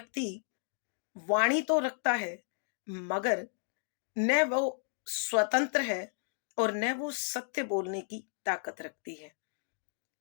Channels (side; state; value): right; silent; digital silence